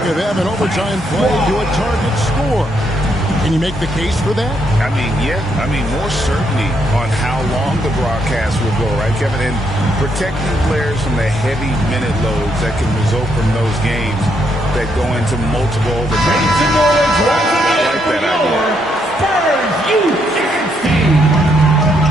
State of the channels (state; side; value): normal; both; correlation 0.75